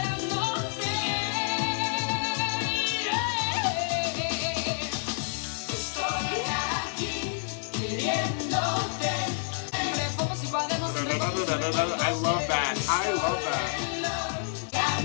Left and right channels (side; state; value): right; silent; digital silence